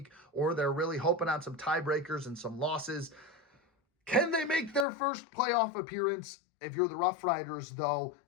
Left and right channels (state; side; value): drops out; right; at 4.9 s